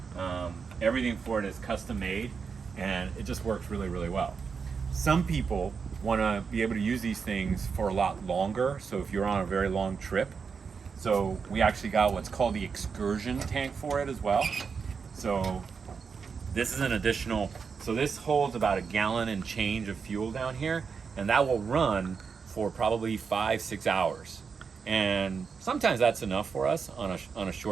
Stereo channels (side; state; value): left; quieter; 5.7 dB